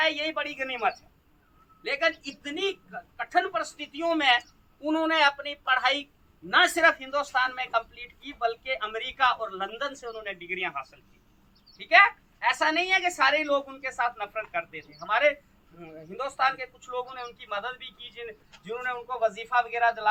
है, यही बड़ी गनीमत है। लेकिन इतनी कठिन परिस्थितियों में उन्होंने अपनी पढ़ाई न सिर्फ हिंदुस्तान में कंप्लीट की, बल्कि अमेरिका और लंदन से उन्होंने डिग्रियां हासिल की, ठीक है? ऐसा नहीं है कि सारे लोग उनके साथ नफरत करते थे, हमारे हिंदुस्तान के कुछ लोगों ने उनकी मदद भी की, जिन्होंने उनको वजीफा वगैरह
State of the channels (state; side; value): identical; both; correlation 1.00